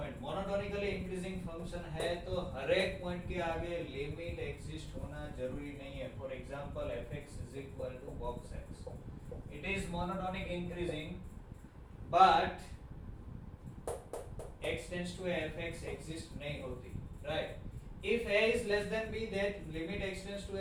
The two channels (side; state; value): both; identical; correlation 1.00